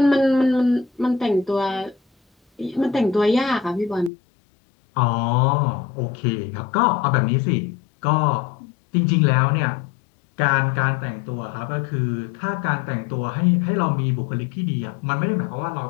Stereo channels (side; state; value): right; drops out; at 4.1 s